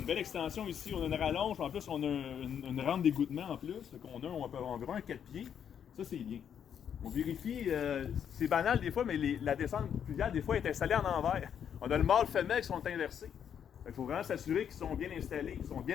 belle extension ici, on a une rallonge, en plus on a une rampe d'égouttement en plus, donc on a environ un 4 pieds. Ça, c'est bien. On vérifie, c'est banal des fois, mais la descente pluviale, des fois, est installée en envers. On a le mâle femelle qui sont inversés. Il faut vraiment s'assurer qu'ils sont bien installés, qu'ils sont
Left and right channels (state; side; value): quieter; right; 8.5 dB